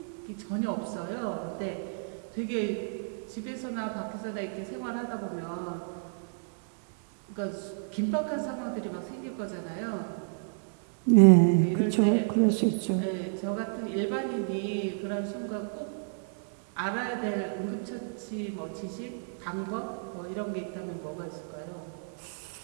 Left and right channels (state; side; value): silent; left; 56 dB below the other